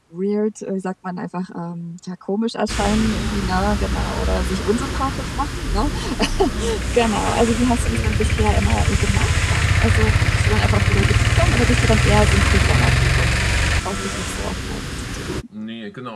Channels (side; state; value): both; identical; correlation 1.00